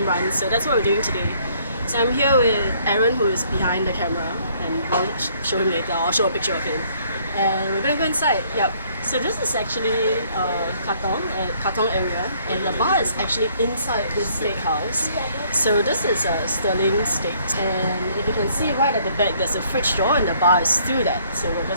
runs. So that's what we're doing today. So I'm here with Aron, who is behind the camera, and I'll show him later. I'll show a picture of him. And we're gonna go inside. Yep. So this is actually Katong area, and the bar is actually inside this steakhouse. So this is a Sterling steak, and if you can see right at the back, there's a fridge door, and the bar is through that. So we're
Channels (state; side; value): inverted; both; correlation -0.63